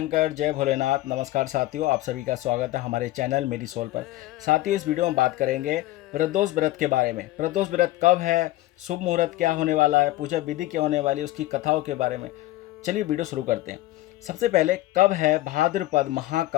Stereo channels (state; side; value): quieter; right; 16.7 dB